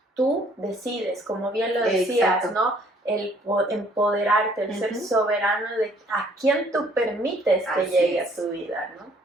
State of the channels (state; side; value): normal; both; correlation 0.61